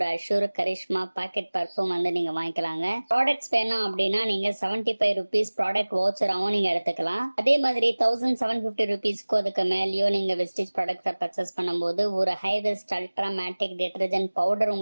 அஷ்யூர் கரிஷ்மா பாக்கெட் பர்ஃப்யூம் வந்து நீங்க வாங்கிக்கலாங்க. ப்ராடக்ட்ஸ் வேணும் அப்படின்னா நீங்க 75 rupees ப்ராடக்ட் வவுச்சராகவும் நீங்க எடுத்துக்கலாம். அதே மாதிரி 1750 rupeesக்கு அதுக்கு மேலேயும் நீங்க வெஸ்டேஜ் ப்ராடக்ட்ஸை பர்ச்சேஸ் பண்ணும்போது ஒரு high west ultra மேட்டிக் detergent powder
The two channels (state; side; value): inverted; both; correlation -1.00